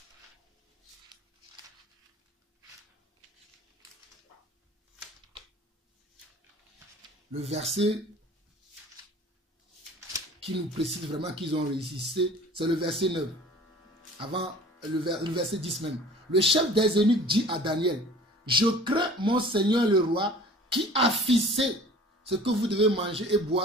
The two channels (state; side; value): normal; both; correlation 0.46